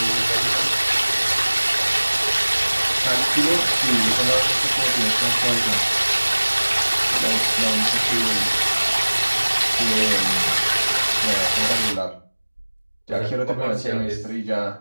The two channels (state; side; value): inverted; both; correlation -1.00